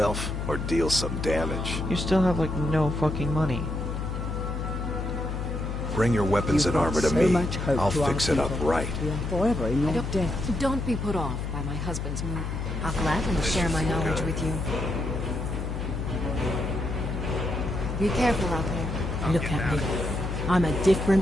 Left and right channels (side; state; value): left; noise; hum, 4 dB below the sound